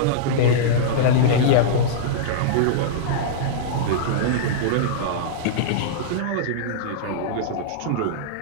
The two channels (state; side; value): different; both; correlation -0.02